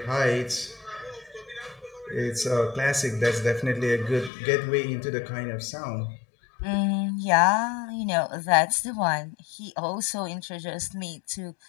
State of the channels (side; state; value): right; drops out; at 4.3 s